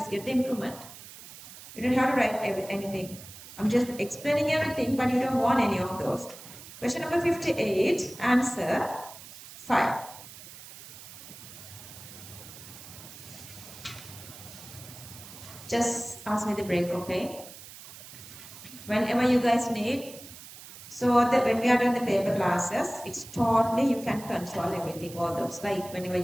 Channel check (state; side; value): noise; right; hiss, 16 dB below the sound